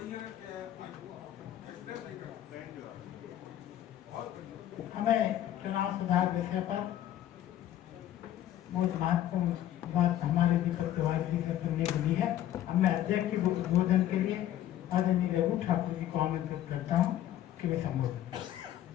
हमें चुनाव सुधार विषय पर बहुत महत्वपूर्ण बात हमारे दीपक तिवारी जी से सुनने के लिए है। अब मैं अध्यक्ष के उद्बोधन के लिए आदरणीय रघु ठाकुर जी को आमंत्रित करता हूँ कि वे संबोधन।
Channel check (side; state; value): right; quieter; 12.3 dB